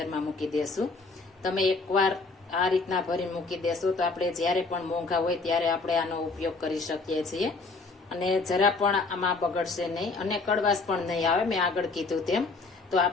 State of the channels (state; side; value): quieter; right; 3.8 dB